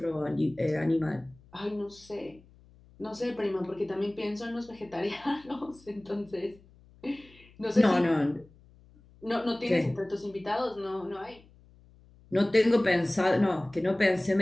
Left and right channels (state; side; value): noise; left; hum, 26 dB below the sound